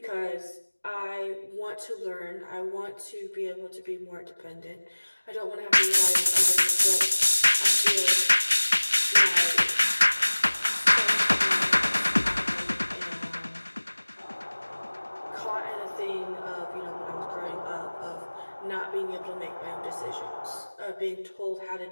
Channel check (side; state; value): both; inverted; correlation -1.00